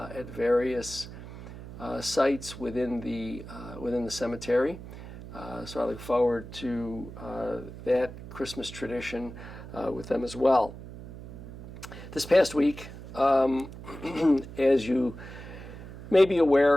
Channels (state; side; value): noise; right; hum, 13 dB below the sound